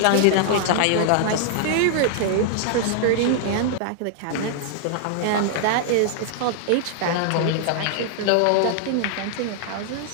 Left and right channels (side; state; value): both; different; correlation -0.01